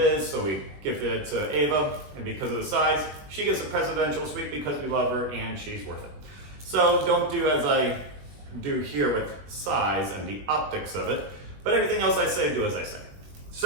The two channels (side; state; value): left; late; 21 ms